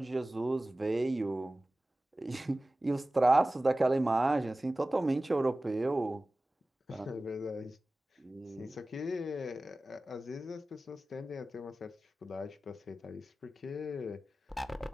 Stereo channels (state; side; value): normal; both; correlation 0.97